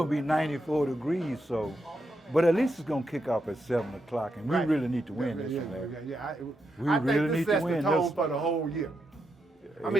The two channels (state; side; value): normal; both; correlation 0.83